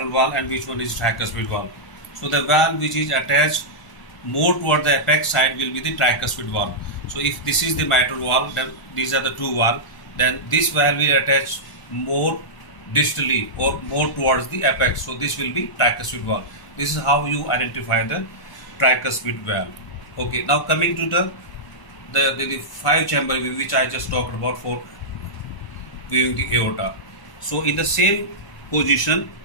valve and which one is tricuspid valve. So the valve which is attached more toward the apex side will be the tricuspid valve. So if this is the mitral valve, then these are the two valves. Then this valve will attach more distally or more towards the apex. So this will be tricuspid valve. This is how you identify the tricuspid valve. Okay, now coming to the five-chamber view which I just talked about for viewing the aorta. So in the same position,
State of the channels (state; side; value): late; right; 1.0 ms